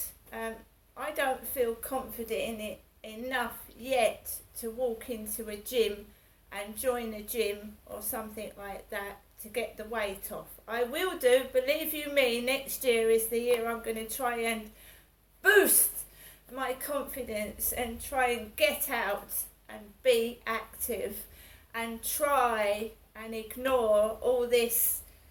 I don't feel confident in it enough yet to walk into a gym and join a gym or something like that to get the weight off. I will do, believe you me, next year is the year I'm going to try and boost my confidence and try and get out and be active and try and ignore all this.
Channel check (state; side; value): identical; both; correlation 1.00